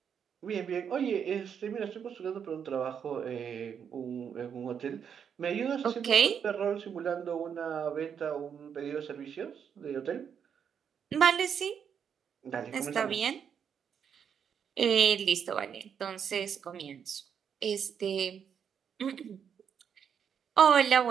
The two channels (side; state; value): left; quieter; 7.6 dB